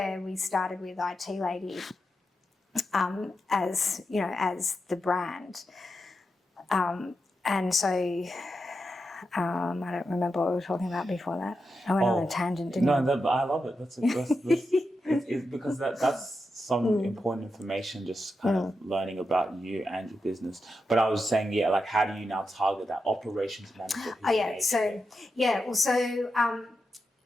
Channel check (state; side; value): normal; both; correlation 0.88